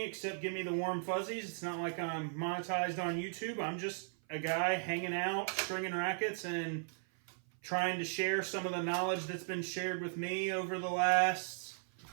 except give me the warm fuzzies. It's not like I'm monetized on YouTube. I'm just a guy hanging out, stringing rackets, and trying to share some of the knowledge that's been shared with me over the last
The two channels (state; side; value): silent; left; 53 dB below the other